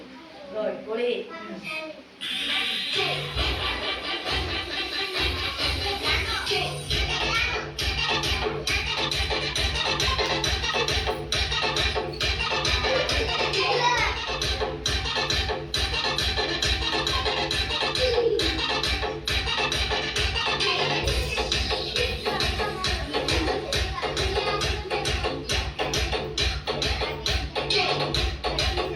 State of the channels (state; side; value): identical; both; correlation 1.00